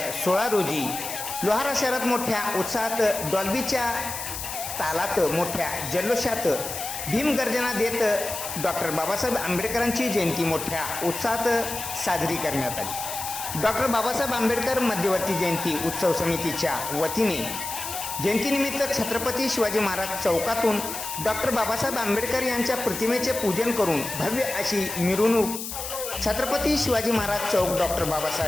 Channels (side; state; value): left; noise; hiss, 7 dB below the sound